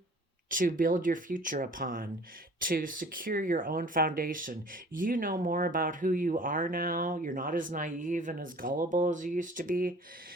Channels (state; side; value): normal; both; correlation 0.48